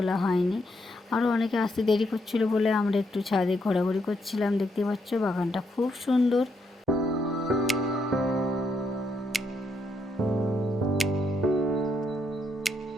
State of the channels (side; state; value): both; normal; correlation 0.77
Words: হয়নি। আরও অনেকে আসতে দেরি করছিল বলে আমরা একটু ছাদে ঘোরাঘুরি করছিলাম। দেখতেই পাচ্ছ বাগানটা খুব সুন্দর।